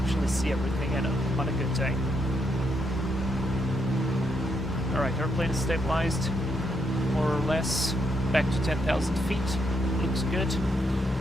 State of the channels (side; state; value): both; normal; correlation 0.78